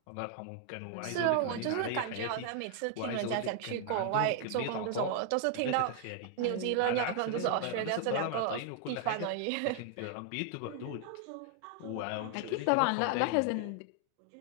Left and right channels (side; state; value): both; different; correlation 0.00